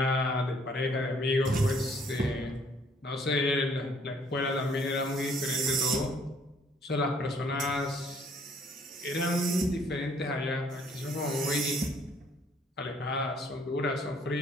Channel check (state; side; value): normal; both; correlation 0.62